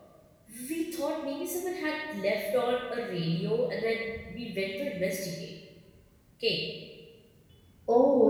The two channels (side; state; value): both; identical; correlation 1.00